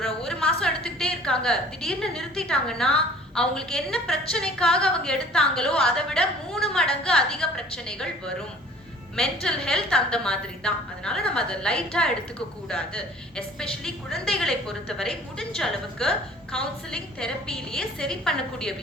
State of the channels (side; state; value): both; normal; correlation 0.50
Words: ஒரு மாசம் எடுத்துக்கிட்டே இருக்காங்க, திடீர்னு நிறுத்திட்டாங்கன்னா அவங்களுக்கு என்ன பிரச்சனைக்காக அவங்க எடுத்தாங்களோ அதை விட 3 மடங்கு அதிக பிரச்சனைகள் வரும். மென்டல் ஹெல்த் அந்த மாதிரி தான். அதனால நம்ம அதை லைட்டா எடுத்துக்க கூடாது. எஸ்பெஷலி குழந்தைகளை பொறுத்தவரை முடிஞ்ச அளவுக்கு கவுன்சிலிங் தெரப்பிலேயே சரி பண்ணக்கூடிய